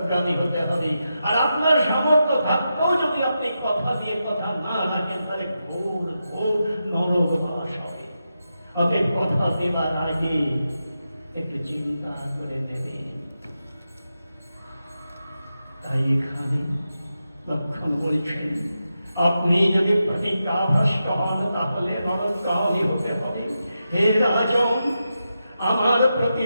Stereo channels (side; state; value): both; inverted; correlation -0.88